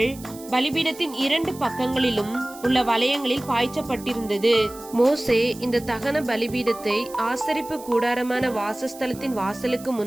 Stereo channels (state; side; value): noise; right; hiss, 18 dB below the sound